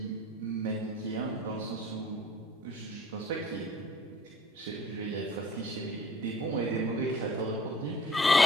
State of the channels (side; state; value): both; normal; correlation 0.52